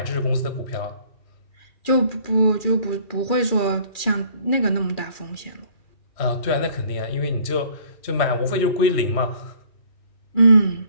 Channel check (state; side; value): late; right; 2.4 ms